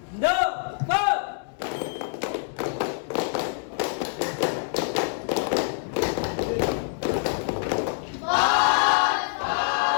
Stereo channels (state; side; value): silent; right; digital silence